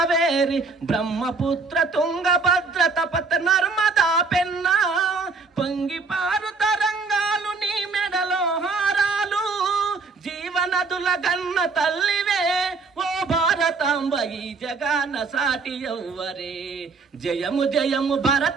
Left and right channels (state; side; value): quieter; left; 4.3 dB